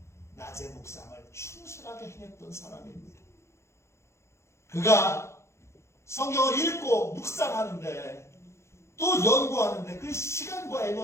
낮의 묵상을 충실하게 행했던 사람입니다. 그가 성경을 읽고 묵상하는데 또 연구하는데 그 시간과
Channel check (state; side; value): late; right; 0.13 ms